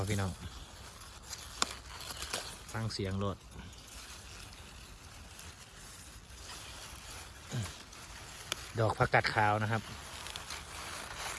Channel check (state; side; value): identical; both; correlation 1.00